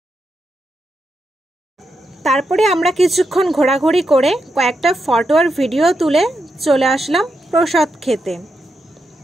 তারপরে আমরা কিছুক্ষণ ঘোরাঘুরি করে কয়েকটা ফটো আর ভিডিও তুলে চলে আসলাম প্রসাদ খেতে।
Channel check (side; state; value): both; normal; correlation 0.84